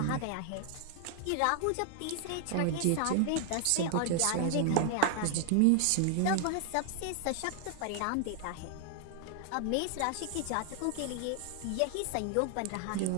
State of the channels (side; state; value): both; different; correlation 0.00